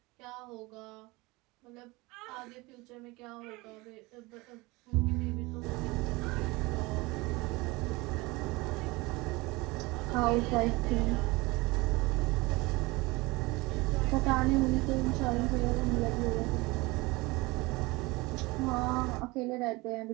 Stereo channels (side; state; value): left; quieter; 23.1 dB